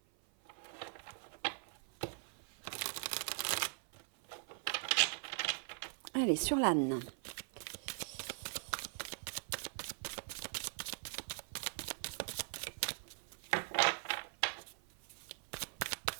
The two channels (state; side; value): silent; left; 50 dB below the other